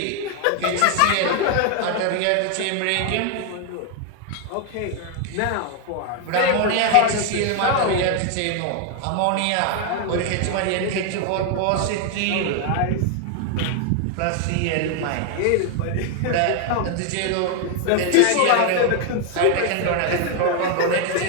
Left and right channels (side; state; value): both; different; correlation 0.01